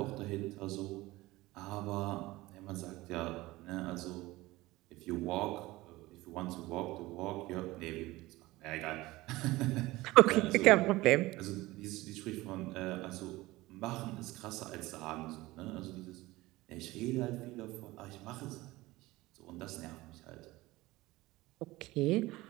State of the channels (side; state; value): left; quieter; 19.3 dB